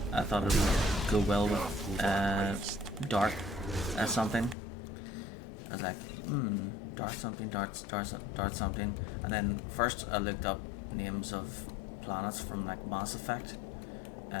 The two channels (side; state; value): right; drops out; at 4.5 s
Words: I thought it would go well with Dart something. I was like, Dart something, Dart something. And then first I looked up names of planets from like Mass Effect.